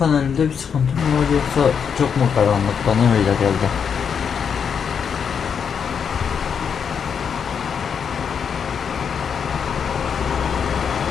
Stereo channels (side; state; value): right; quieter; 7.0 dB